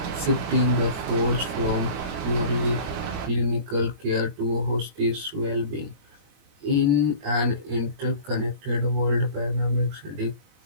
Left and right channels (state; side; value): late; left; 21 ms